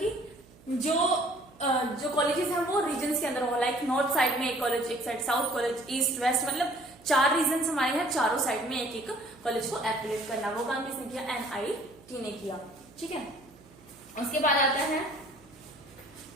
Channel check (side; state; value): right; noise; hum, 25 dB below the sound